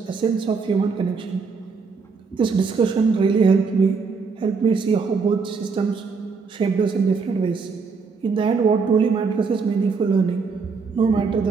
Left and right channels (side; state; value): left; quieter; 5.0 dB